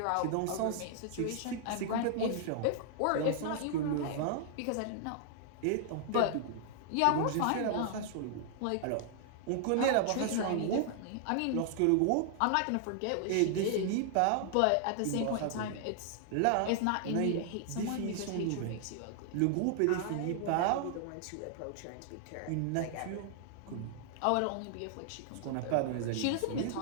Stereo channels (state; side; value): different; both; correlation -0.01